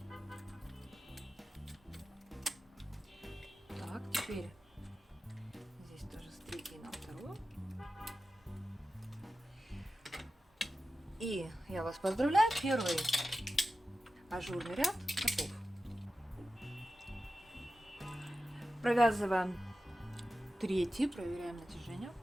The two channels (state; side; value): normal; both; correlation 0.93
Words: Так, теперь здесь тоже с 3-й на 2-ю. И я вас поздравляю, первый ажурный ряд готов. Провязываем 3-й, проверяем натяжение.